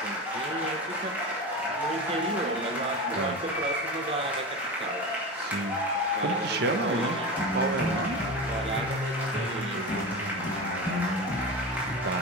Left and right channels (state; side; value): normal; both; correlation 0.25